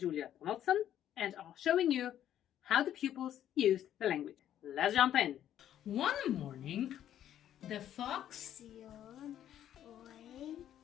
Donaldson and are showing you how the pupils used the language. Let's jump in. One morning, the fox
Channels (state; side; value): quieter; right; 11.0 dB